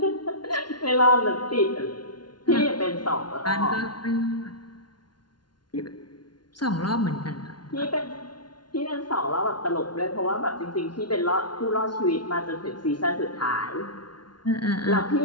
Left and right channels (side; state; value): right; late; 0.70 ms